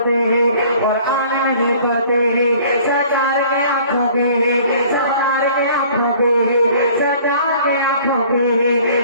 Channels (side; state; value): both; inverted; correlation -0.52